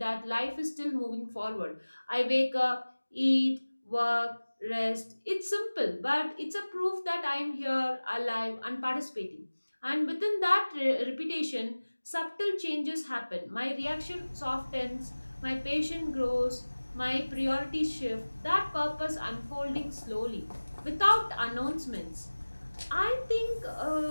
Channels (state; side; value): inverted; both; correlation -1.00